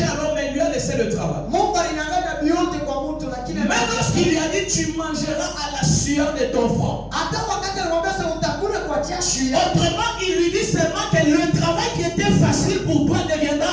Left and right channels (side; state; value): both; identical; correlation 1.00